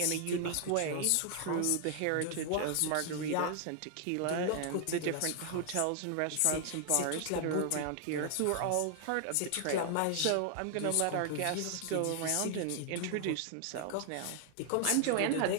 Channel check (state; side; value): different; both; correlation 0.00